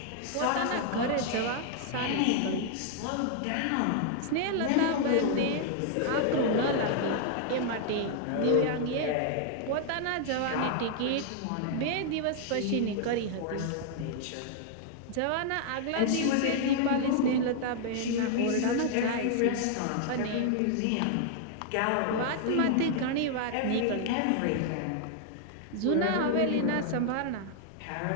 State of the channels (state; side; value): different; both; correlation 0.00